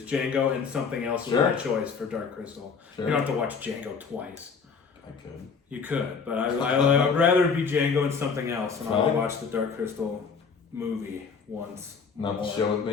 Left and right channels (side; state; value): right; quieter; 5.5 dB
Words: Django and something else was my choice for Dark Crystal. You don't have to watch Django twice. I could. You could, but I would rather it be Django and something else, and I'll watch the Dark Crystal movie once. Not the show with